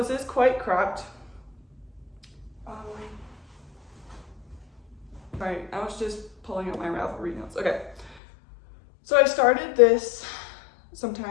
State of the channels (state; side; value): drops out; right; at 8.2 s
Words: is quite cropped. Alright, I was just pulling up my Ravelry notes. Okay, so I started this